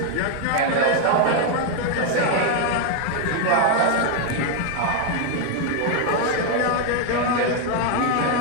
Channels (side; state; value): both; different; correlation 0.00